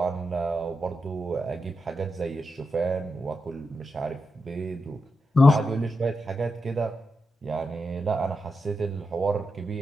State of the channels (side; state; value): both; normal; correlation 0.87